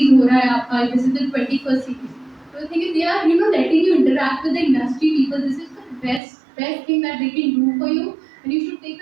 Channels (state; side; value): drops out; left; at 6.2 s